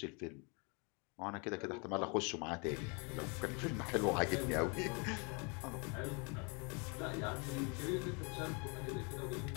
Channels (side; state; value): right; quieter; 31.9 dB